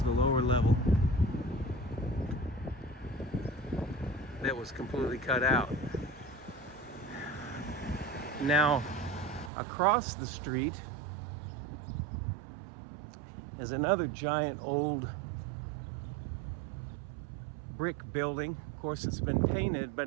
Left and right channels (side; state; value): left; drops out; at 9.5 s